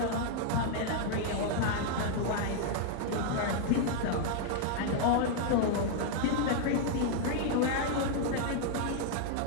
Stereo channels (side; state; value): both; different; correlation 0.00